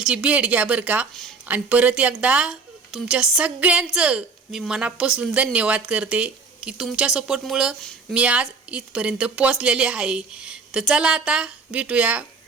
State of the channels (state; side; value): quieter; left; 4.6 dB